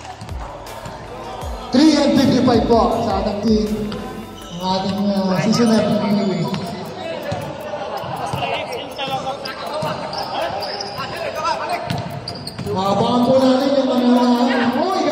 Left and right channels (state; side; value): identical; both; correlation 1.00